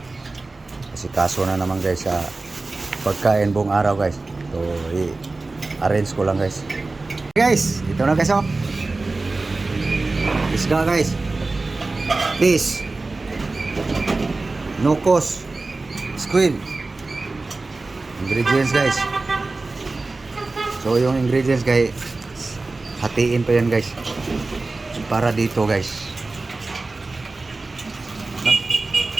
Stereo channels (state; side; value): quieter; left; 3.4 dB